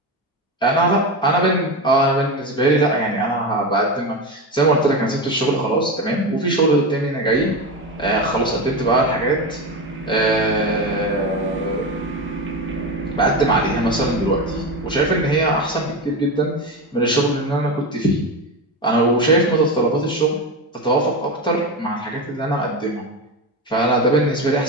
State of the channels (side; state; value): both; normal; correlation 0.18